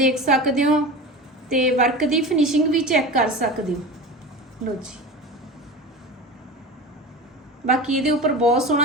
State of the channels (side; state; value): both; normal; correlation 0.31